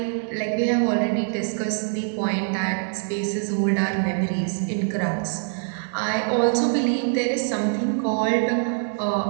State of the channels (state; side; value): silent; left; 63 dB below the other